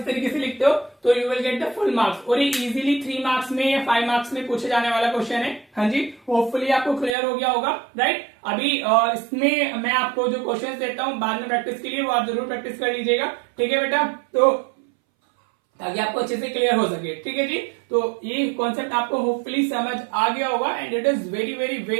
तरीके से लिखते हो तो you will get the full marks, और ये इजीली 3 मार्क्स में या 5 मार्क्स में पूछे जाने वाला क्वेश्चन है। हाँ जी, होपफुली आपको क्लियर हो गया होगा, राइट। अभी इसमें मैं आपको जो क्वेश्चन देता हूँ बाद में प्रैक्टिस के लिए, वो आप जरूर प्रैक्टिस कर लीजिएगा, ठीक है बेटा, तो ताकि आपको अच्छे से क्लियर हो सके, ठीक है जी। तो ये कॉन्सेप्ट आपको होपफुली समझ आ गया होगा, and it is very very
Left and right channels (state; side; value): drops out; left; at 7.2 s